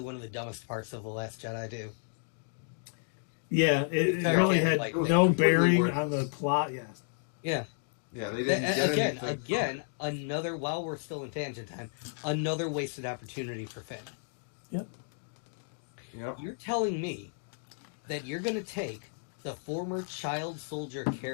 one of the dumbest parts of The Last Jedi, too. Yeah, it really had no bearing on the plot. Yes. Yeah. Yeah, they didn't again, another. While we're still in tangent time, another wasted opportunity for Finn. Yep. You're telling me that you're going to take the former child soldier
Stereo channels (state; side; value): silent; right; digital silence